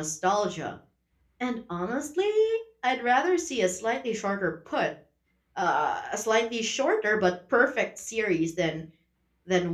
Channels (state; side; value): identical; both; correlation 1.00